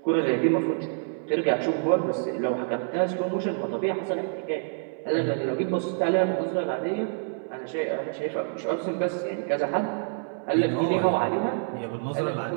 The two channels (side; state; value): left; silent; digital silence